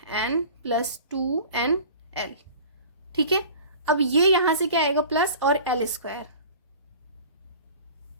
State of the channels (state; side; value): inverted; both; correlation -0.42